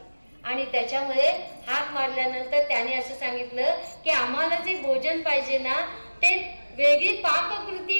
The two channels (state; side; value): inverted; both; correlation -1.00